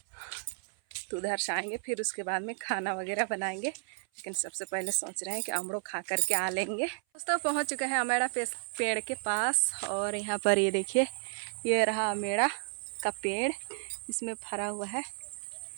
तो उधर से आएंगे फिर उसके बाद में खाना वगैरह बनाएंगे। लेकिन सबसे पहले सोच रहे हैं कि अमड़ो खा करके आ लेंगे। दोस्तों पहुँच चुके हैं अमेड़ा पेड़ के पास। और यहाँ पर ये देखिए, ये रहा अमेड़ा का पेड़, इसमें भरा हुआ है,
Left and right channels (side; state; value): left; silent; 56 dB below the other